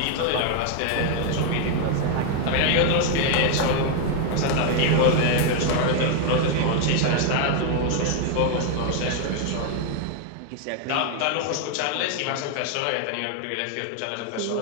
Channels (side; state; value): both; different; correlation 0.00